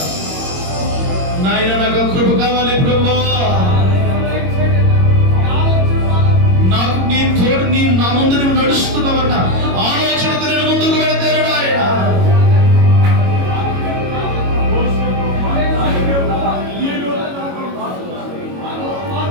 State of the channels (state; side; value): late; left; 22 ms